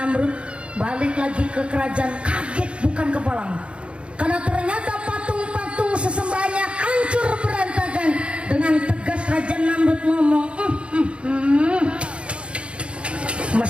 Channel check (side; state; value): left; late; 0.058 ms